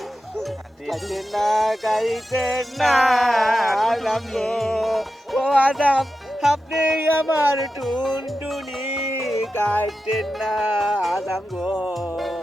খাইতেন না খাইতেন না আদম গো ও আদম আপনি আমার টুনটুনি খাইতেন না আদম গো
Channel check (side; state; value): both; normal; correlation 0.91